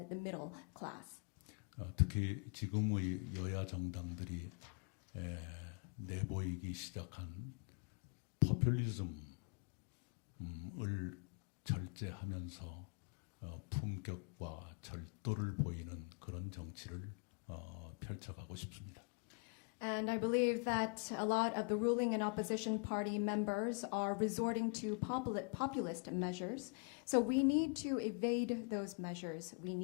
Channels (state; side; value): quieter; right; 39.3 dB